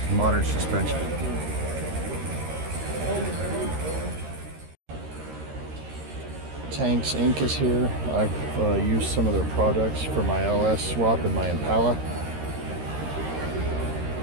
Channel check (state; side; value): late; left; 13 ms